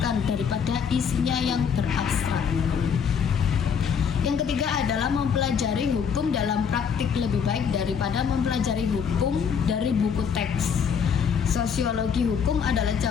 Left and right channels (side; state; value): right; quieter; 7.0 dB